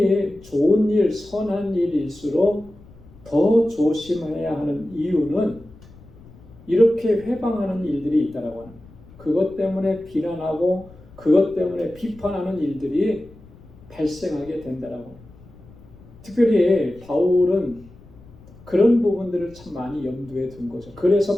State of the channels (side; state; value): left; noise; rumble, 22 dB below the sound